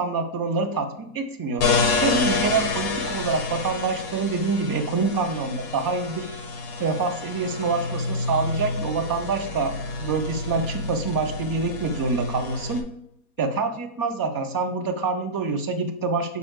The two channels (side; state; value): right; late; 4.2 ms